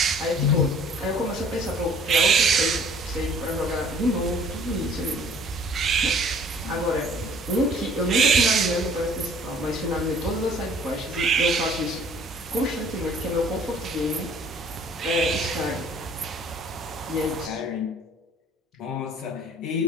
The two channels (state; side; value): normal; both; correlation 0.54